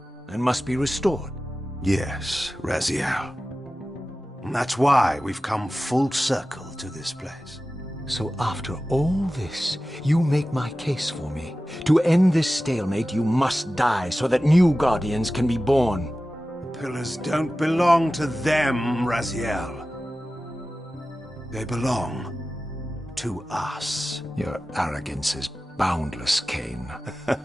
and must be restored. Yes, Raziel. And that's why we've come full circle to this place. So after all this, you make my case for me. To end this stalemate, you must die so that new Guardians can be born. The Pillars don't belong to them, Raziel. They belong to us. Your arrogance is boundless, Kain.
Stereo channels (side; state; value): both; normal; correlation 0.95